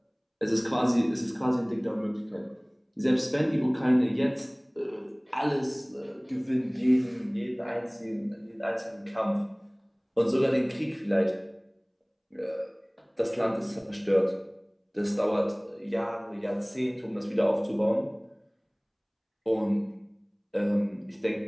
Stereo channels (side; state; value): both; identical; correlation 1.00